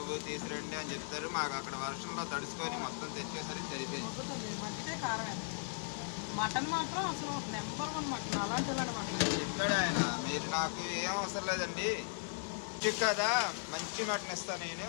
తీసురండి అని చెప్తారు. మాకు అక్కడ వర్షంలో తడుచుకొని మొత్తం తెచ్చేసరికి సరిపోయింది. ఇక్కడ ఆయన మీరు నాకు ఏం అవసరం లేదండి. కదా మంచి మటన్ ఇస్తాను నేను.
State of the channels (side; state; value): right; silent; digital silence